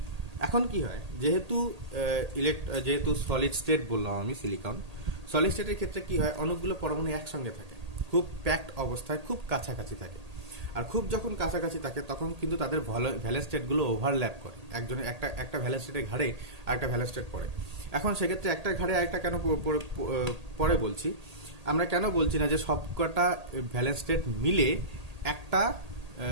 এখন কি হয়, যেহেতু সলিড স্টেট বললাম আমি সিলিকন, সলিড স্টেটের ক্ষেত্রে কি হয়, অনেকগুলো পরমাণু একসঙ্গে থাকে, খুব প্যাকড অবস্থায় খুব কাছাকাছি থাকে। আর খুব যখন কাছাকাছি থাকে তখন কিন্তু তাদের ভ্যালেন্স স্টেটগুলো ওভারল্যাপ করে, একজনের একটা ভ্যালেন্স স্টেটের ঘাড়ে আরেকটা ভ্যালেন্স স্টেট পড়ে। এখন সেক্ষেত্রে একটা ঘাড়ে আরেকটা কেন পরে বলছি, আমরা কেন বলছি না যে সবকটা ভ্যালেন্স স্টেট মিলে একটা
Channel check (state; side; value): late; left; 1.8 ms